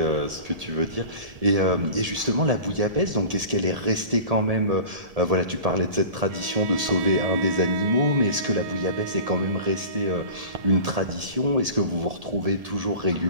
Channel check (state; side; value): late; left; 1.7 ms